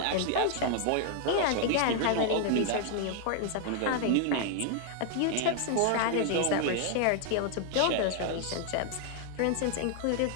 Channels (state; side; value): different; both; correlation 0.00